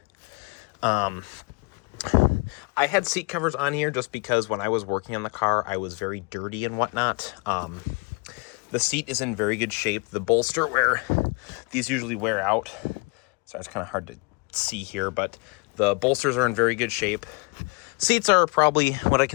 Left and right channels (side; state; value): right; quieter; 31.2 dB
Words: I had seat covers on here just because when I was working on the car, I was very dirty and whatnot. The seat is in very good shape. The bolster where these usually wear out, so it's kind of hard to see here, but the bolsters are in very good shape. Seats are probably what I